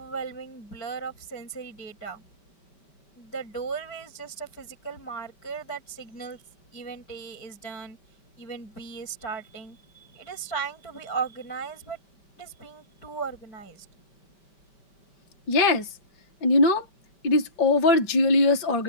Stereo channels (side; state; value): right; late; 5.2 ms